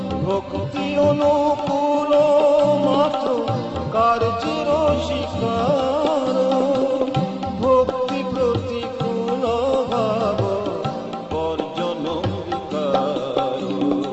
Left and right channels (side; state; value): both; identical; correlation 1.00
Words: ভক্তি অনুকূল মাত্র কার্যের শিকার। ভক্তি প্রতিকূল ভাব বর্জন বিকার।